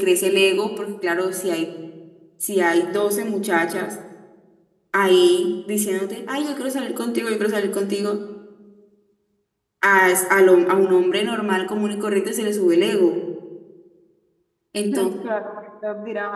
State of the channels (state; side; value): identical; both; correlation 1.00